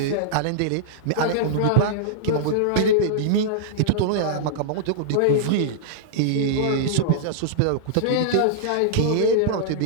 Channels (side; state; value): both; different; correlation -0.02